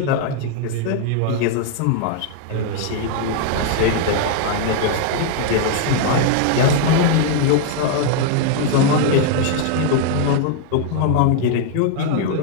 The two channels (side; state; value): both; different; correlation 0.00